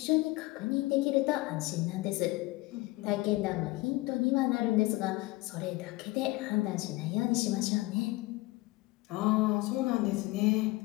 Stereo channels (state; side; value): quieter; right; 21.0 dB